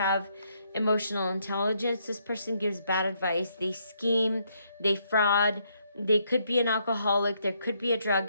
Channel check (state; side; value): inverted; both; correlation -0.74